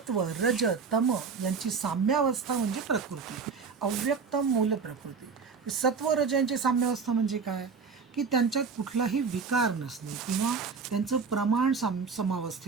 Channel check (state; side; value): quieter; left; 5.3 dB